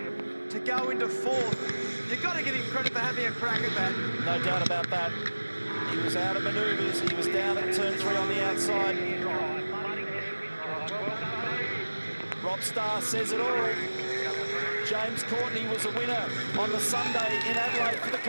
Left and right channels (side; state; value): both; inverted; correlation -1.00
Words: to go into fourth. You've got to give him credit for having a crack at that. No doubt about that. He was out of manoeuvres. He was down at turn 3 on the outside. Rob Starr says it all. James Courtney was a winner on the Sunday in Adelaide for the